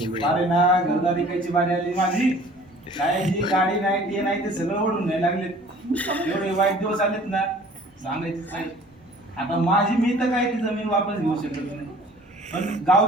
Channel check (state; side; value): normal; both; correlation 0.50